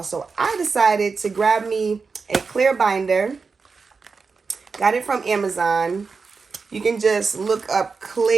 So I decided to grab me a clear binder. Got it from Amazon. You can just look up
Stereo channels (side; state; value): left; quieter; 4.8 dB